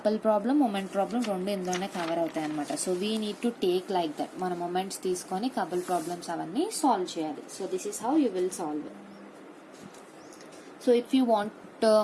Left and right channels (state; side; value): identical; both; correlation 1.00